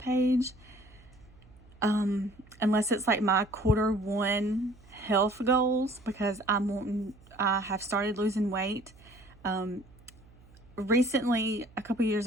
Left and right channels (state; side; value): noise; right; hum, 25 dB below the sound